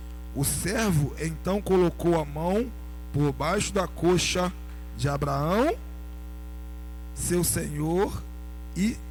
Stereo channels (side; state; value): both; identical; correlation 1.00